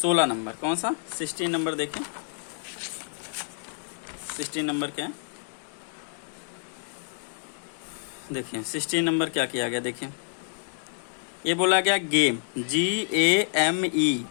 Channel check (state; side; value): silent; right; 59 dB below the other